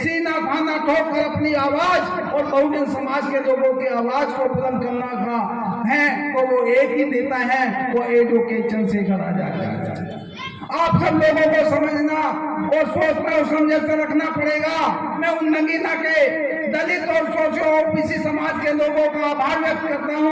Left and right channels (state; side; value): identical; both; correlation 1.00